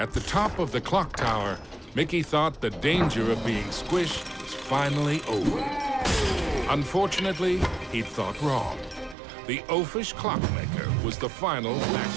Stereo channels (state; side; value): drops out; left; at 9.2 s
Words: top of the clock tower, Mickey thought the danger of being squished was finally over. Unfortunately, he'd thought wrong. The oafish clockmaker was the final